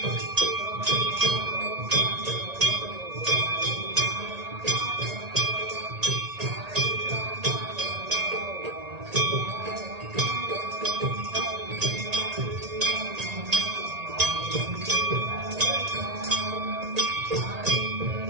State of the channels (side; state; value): left; late; 1.8 ms